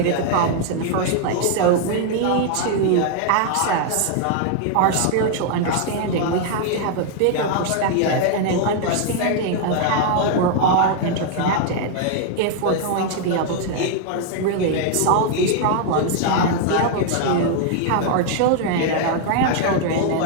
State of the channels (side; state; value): both; different; correlation 0.00